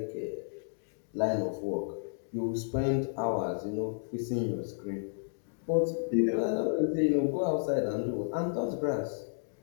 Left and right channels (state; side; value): silent; right; digital silence